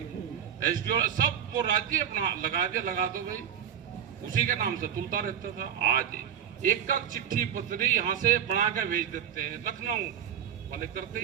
एसडीओ सब वो राज्य अपना लगा दिया, लगा दो भाई, उसी के नाम से तुलता रहता था। आज एक का चिट्ठी पत्री यहां से बना कर भेज देते हैं, लखनऊ वाले करते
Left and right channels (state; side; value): quieter; left; 9.2 dB